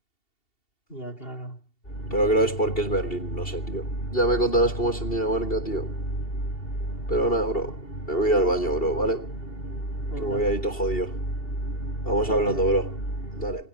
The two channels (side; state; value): right; late; 2.7 ms